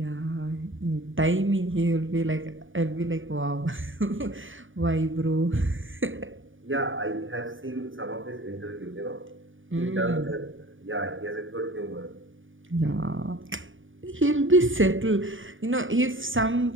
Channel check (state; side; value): late; left; 0.57 ms